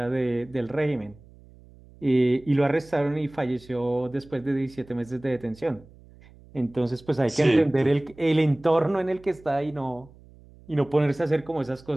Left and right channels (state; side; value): noise; right; hum, 24 dB below the sound